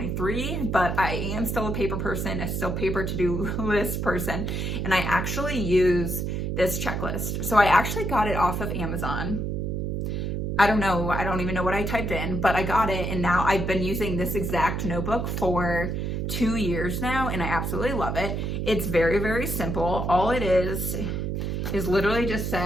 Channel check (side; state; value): right; noise; hum, 1 dB below the sound